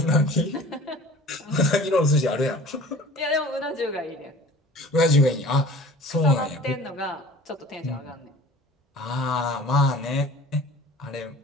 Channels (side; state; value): both; normal; correlation 0.45